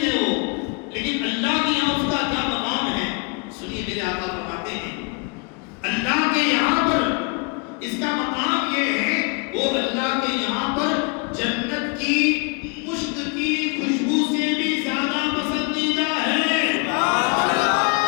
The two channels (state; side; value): quieter; right; 32.3 dB